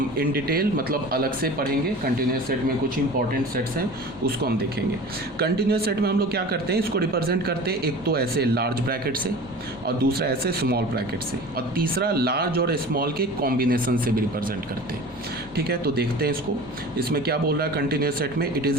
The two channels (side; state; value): both; normal; correlation 0.38